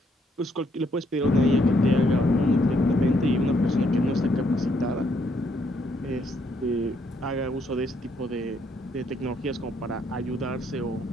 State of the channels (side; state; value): both; normal; correlation 0.72